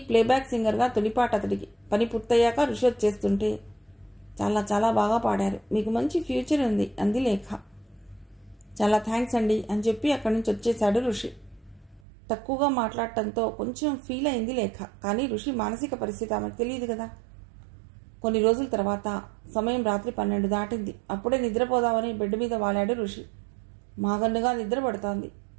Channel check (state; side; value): drops out; left; at 12.0 s